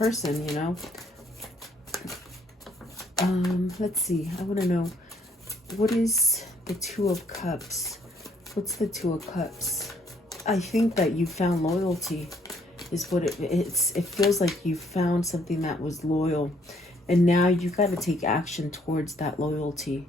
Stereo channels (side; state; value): both; normal; correlation 0.66